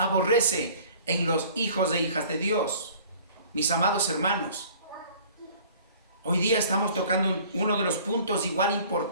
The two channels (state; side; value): inverted; both; correlation -0.50